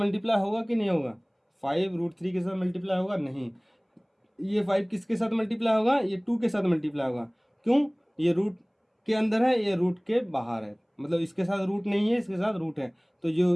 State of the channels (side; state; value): both; identical; correlation 1.00